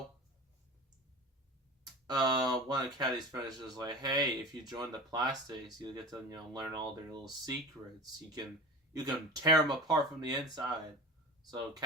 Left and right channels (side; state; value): both; normal; correlation 0.33